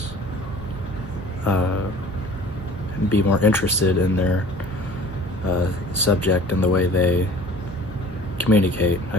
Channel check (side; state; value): right; noise; rumble, 16 dB below the sound